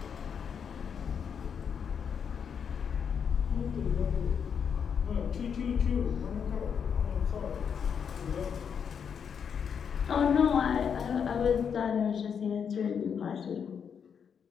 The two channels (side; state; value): right; quieter; 7.2 dB